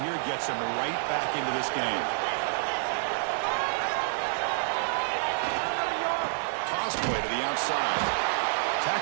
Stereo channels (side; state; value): left; silent; digital silence